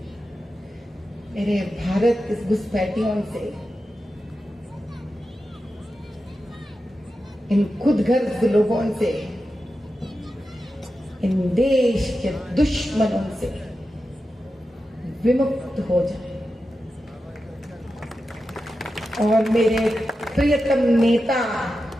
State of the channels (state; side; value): normal; both; correlation 0.91